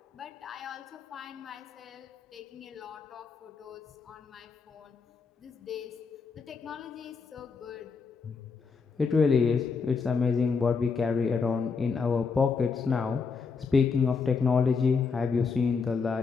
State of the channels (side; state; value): right; quieter; 5.1 dB